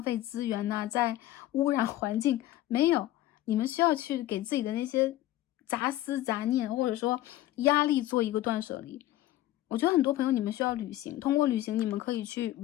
费资源呐、在污染环境，没有，你们需要去给自己的那些杂思杂念或者说压力做一个断舍离。我觉得很多朋友你们需要旅行，通过旅行你们可以去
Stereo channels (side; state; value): right; quieter; 14.9 dB